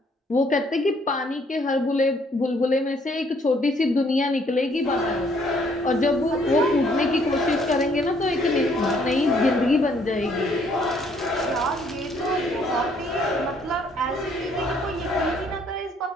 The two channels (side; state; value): both; normal; correlation 0.65